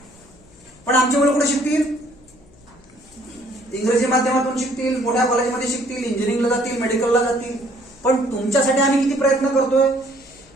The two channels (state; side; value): noise; left; hum, 27 dB below the sound